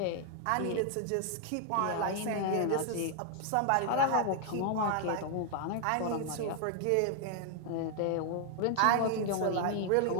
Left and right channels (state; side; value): different; both; correlation 0.00